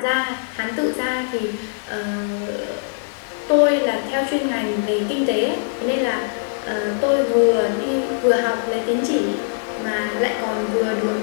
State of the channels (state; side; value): silent; right; digital silence